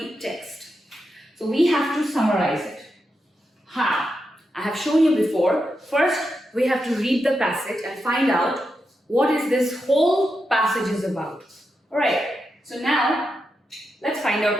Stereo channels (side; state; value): both; normal; correlation 0.87